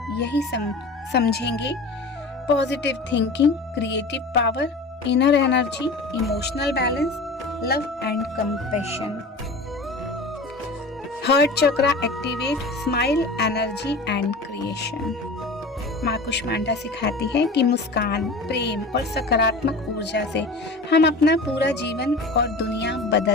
समझेंगे: positive thinking, creative power, inner energy, emotional balance, love and compassion. Heart chakra activate smile, energy and creation. माँ कुष्मांडा सिखाती है कि मुस्कान, प्रेम और सकारात्मक ऊर्जा से हम अपना पूरा जीवन और दुनिया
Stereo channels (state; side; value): quieter; right; 3.2 dB